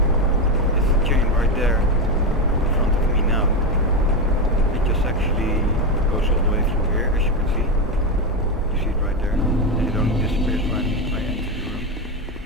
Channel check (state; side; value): normal; both; correlation 0.11